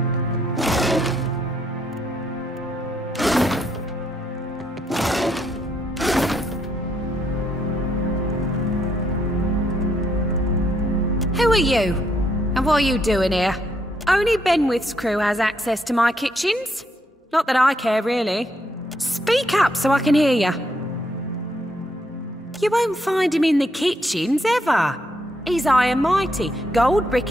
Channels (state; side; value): normal; both; correlation 0.74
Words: Who are you? And what are you doing here? Only Benwith's crew has access to my kitchens. Not that I care, really. Speak up so I can hear you. You won't find him in the kitchens, ever. He's high and mighty, gold